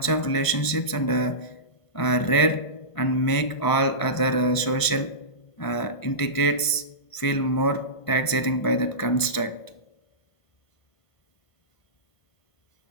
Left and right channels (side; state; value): right; late; 1.5 ms